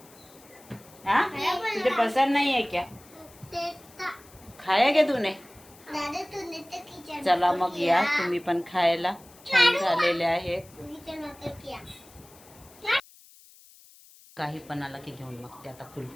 हाँ तुझे पसंद नहीं है क्या? खाया क्या तूने? चला मग या तुम्ही पण खायला. छान झालेले आहे. काही पण आला की घेऊन मग ते आता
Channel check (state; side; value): noise; left; hiss, 24 dB below the sound